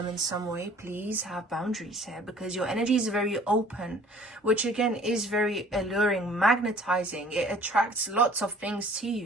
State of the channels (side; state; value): both; normal; correlation 0.52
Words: in some way. Please have boundaries here, because your energy is very open, which again is very alluring, magnetizing. It attracts lots of things to